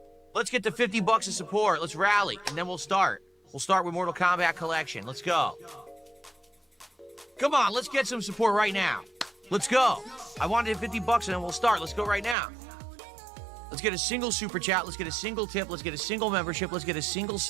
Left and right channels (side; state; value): left; drops out; at 12.4 s